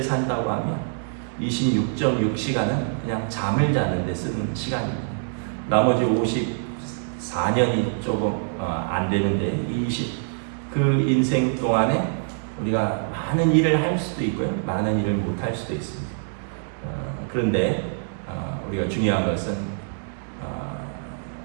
산다고 하면 26.6시간은 그냥 잠을 자는데 쓰는 시간입니다. 나머지 54년이 조금 안 되는데 그 인생 동안에 우리가 많은 일을 할 수도 있고요, 많은 일을 못 할 수도 있습니다. 그런데 우리가 중요한 것은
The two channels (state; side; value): silent; left; digital silence